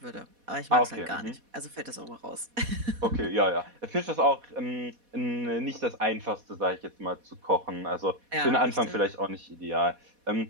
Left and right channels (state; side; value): late; left; 4.1 ms